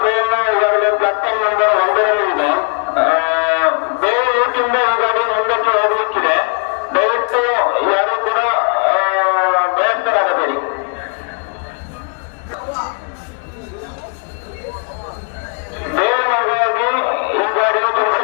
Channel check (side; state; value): right; quieter; 37.9 dB